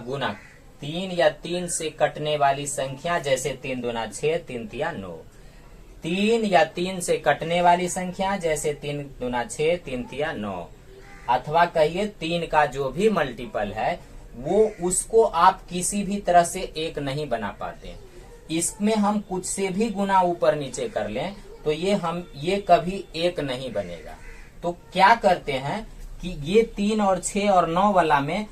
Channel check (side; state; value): both; identical; correlation 1.00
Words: 3 या 3 से कटने वाली संख्या, जैसे 3 दूना 6, 3 तिया 9। 3 या 3 से कटने वाली संख्या, जैसे 3 दूना 6, 3 तिया 9। अथवा कहिए 3 का जो भी मल्टीपल है वो उसको आप किसी भी तरह से 1 नहीं बना पाते। इसमें हम कुछ से भी गुना ऊपर नीचे कर लें तो ये कभी एक नहीं बनेगा। तो क्या करते हैं कि ये 3 और 6 और 9 वाला में